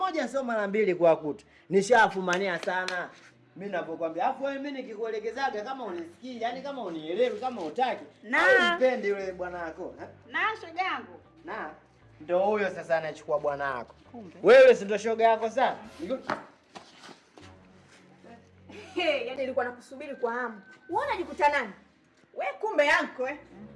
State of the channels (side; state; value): both; identical; correlation 1.00